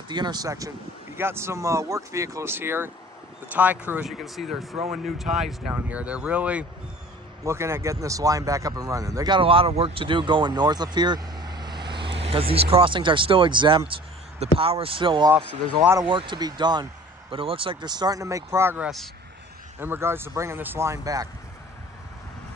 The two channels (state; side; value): normal; both; correlation 0.46